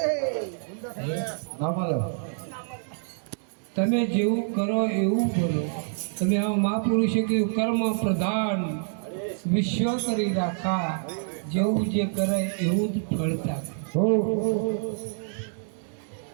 ના મળે. તમે જેવું કરો એવું બોલો. તમે આ મહાપુરુષે કીધું કર્મ પ્રધાન વિશ્વ કરી રાખા, જેવું જે કરે એવું જ ફળતા.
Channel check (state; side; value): silent; left; digital silence